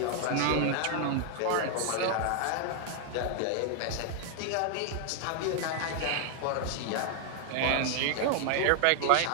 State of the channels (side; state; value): both; different; correlation 0.00